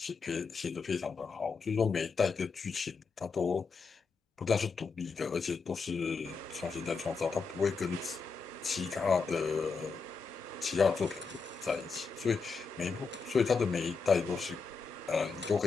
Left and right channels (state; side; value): quieter; right; 4.8 dB